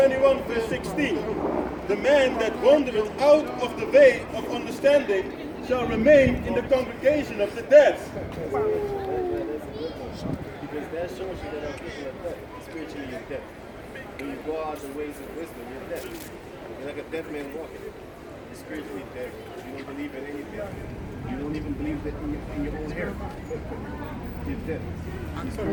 verse 16. The man that wandereth out of the way of understanding shall remain in the congregation of the dead. Because that shows you that our people are dead. Spiritually, you're dead. When you go out the ways of wisdom, you're dead. You're like a dead man walking. You're spiritually dead. You don't believe in anything. You don't even believe that in your own hair. You're dead. You're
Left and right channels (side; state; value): both; identical; correlation 1.00